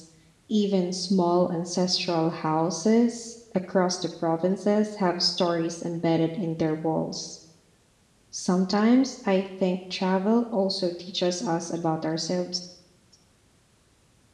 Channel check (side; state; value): both; identical; correlation 1.00